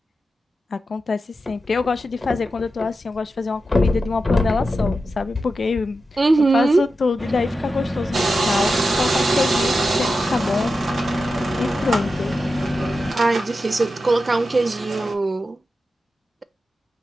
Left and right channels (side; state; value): both; normal; correlation 0.90